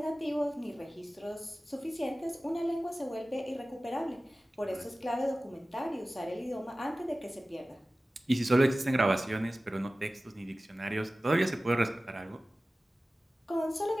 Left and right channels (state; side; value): normal; both; correlation 0.96